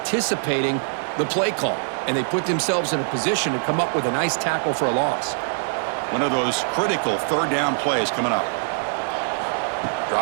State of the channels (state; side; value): silent; left; 63 dB below the other